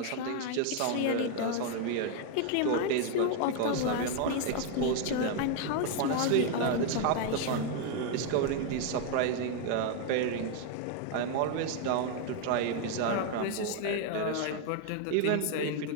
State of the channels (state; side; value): different; both; correlation 0.00